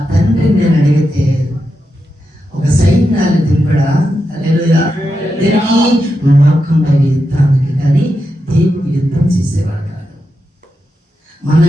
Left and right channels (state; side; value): normal; both; correlation 0.87